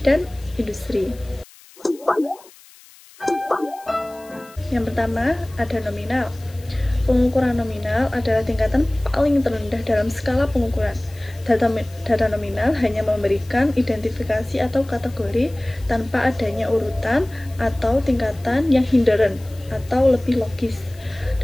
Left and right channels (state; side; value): noise; left; hiss, 24 dB below the sound